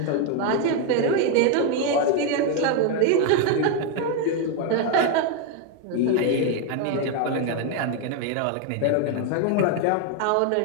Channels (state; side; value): different; both; correlation 0.01